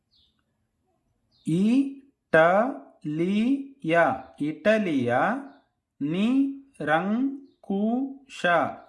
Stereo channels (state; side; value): identical; both; correlation 1.00